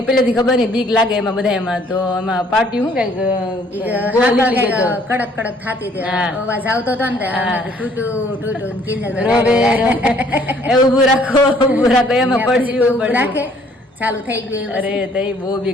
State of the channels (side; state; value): both; normal; correlation 0.61